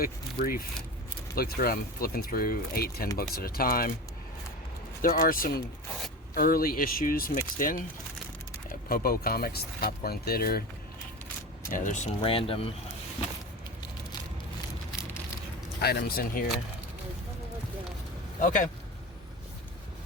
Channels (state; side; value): normal; both; correlation 0.28